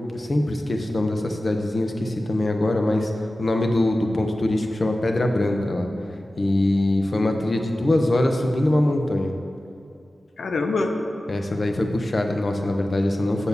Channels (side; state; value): both; normal; correlation 0.95